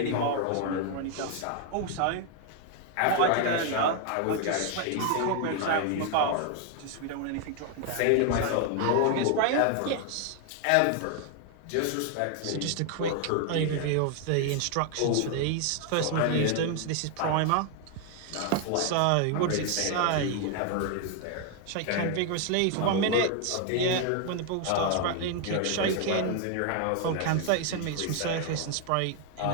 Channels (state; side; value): different; both; correlation 0.00